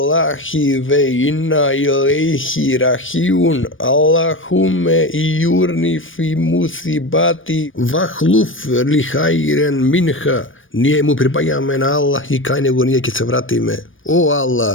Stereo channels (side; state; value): right; late; 0.57 ms